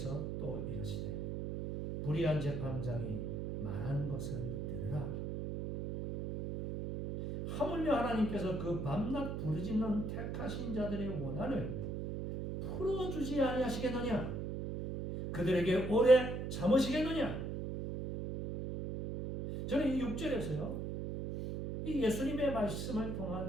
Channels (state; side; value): noise; right; hum, 4 dB below the sound